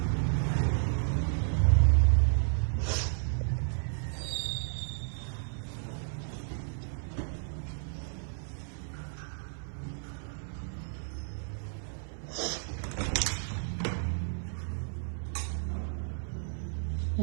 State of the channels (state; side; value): silent; left; 56 dB below the other